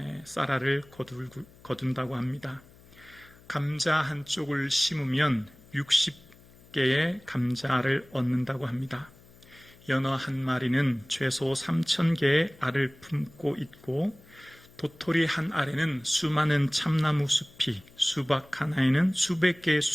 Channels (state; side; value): noise; left; hum, 25 dB below the sound